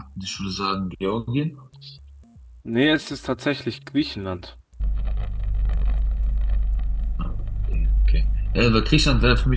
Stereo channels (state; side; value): identical; both; correlation 1.00